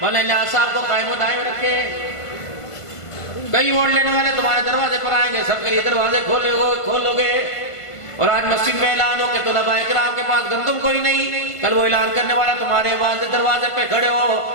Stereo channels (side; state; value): right; late; 1.5 ms